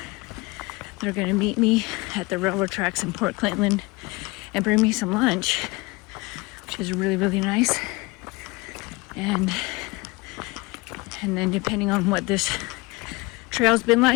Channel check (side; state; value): right; quieter; 24.1 dB